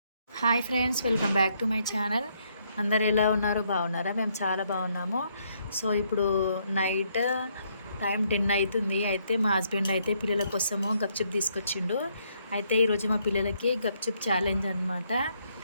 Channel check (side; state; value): both; inverted; correlation -0.73